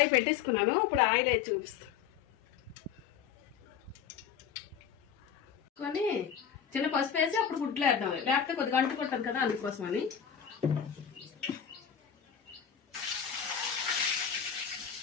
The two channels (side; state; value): right; quieter; 8.2 dB